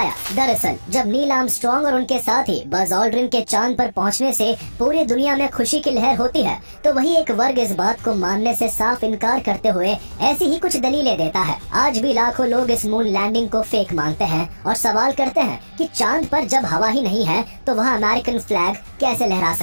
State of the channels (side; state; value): both; inverted; correlation -1.00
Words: दरअसल जब नील आर्मस्ट्रांग और उनके साथी बज ऑल्ड्रिन के चांद पर पहुंचने से पूरी दुनिया में खुशी की लहर होती है, तो वही एक वर्ग इस बात को मानने से साफ इनकार करते हुए ऐसी ही कुछ दलीलें देता है। आज भी लाखों लोग इस मून लैंडिंग को फेक मानते हैं और सवाल करते हैं कि चांद पर जब हवा ही नहीं है तो वहाँ अमेरिकन फ्लैग कैसे लहरा